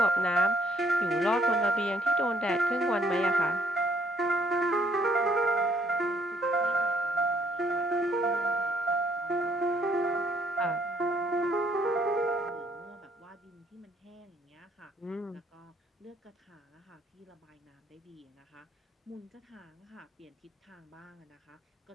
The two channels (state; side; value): normal; both; correlation 0.66